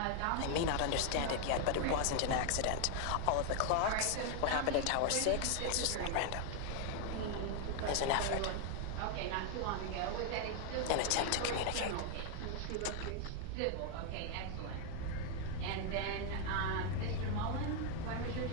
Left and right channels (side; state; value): both; different; correlation 0.00